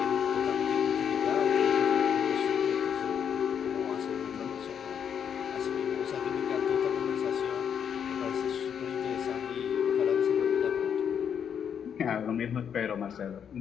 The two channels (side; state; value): right; quieter; 8.0 dB